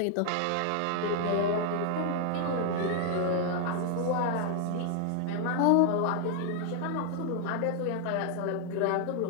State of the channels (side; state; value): both; different; correlation 0.00